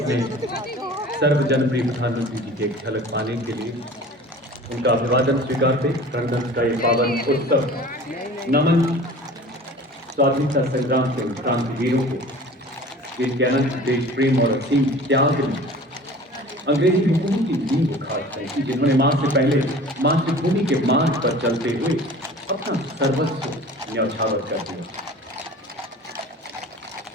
सर्व जनप्रिय प्रधानमंत्री जी की एक झलक पाने के लिए उनका अभिवादन स्वीकारते गणतंत्र का ये पावन उत्सव नमन स्वाधीनता संग्राम के क्रांतिवीरों को जिनके अनंत देश प्रेम और असीम त्याग ने अंग्रेजी हुकूमत की नींव उखाड़ फेंकी, जिन्होंने मां से पहले मातृभूमि के मार्ग पर चलते हुए अपना सर्वस्व न्यौछावर कर दिया।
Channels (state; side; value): normal; both; correlation 0.42